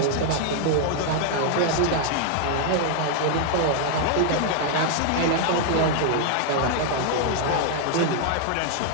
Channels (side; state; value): both; different; correlation 0.00